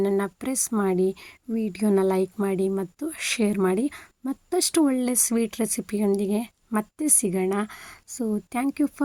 ಪ್ರೆಸ್ ಮಾಡಿ, ವಿಡಿಯೋನ ಲೈಕ್ ಮಾಡಿ ಮತ್ತು ಶೇರ್ ಮಾಡಿ. ಮತ್ತಷ್ಟು ಒಳ್ಳೆ ಸ್ವೀಟ್ ರೆಸಿಪಿಯೊಂದಿಗೆ ಮತ್ತೆ ಸಿಗೋಣ. So thank you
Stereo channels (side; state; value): both; identical; correlation 1.00